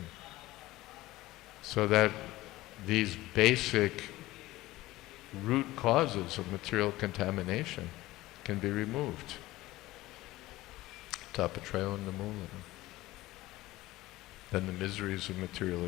So that these basic root causes of material contamination can be removed. Tapatrayo namulam. Then the miseries of material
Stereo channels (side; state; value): right; quieter; 17.8 dB